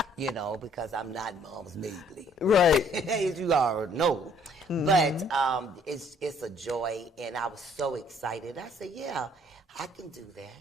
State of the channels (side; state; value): both; normal; correlation 0.61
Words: because I'm not Moms Mabley. Right. As you already know. But it's a joy, and I was so excited. I said, yeah, I can do that.